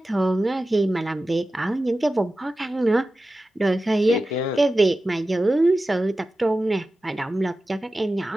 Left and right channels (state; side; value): normal; both; correlation 0.94